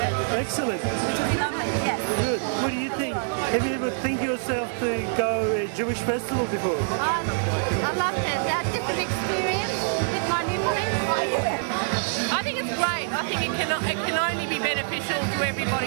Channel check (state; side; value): silent; left; 61 dB below the other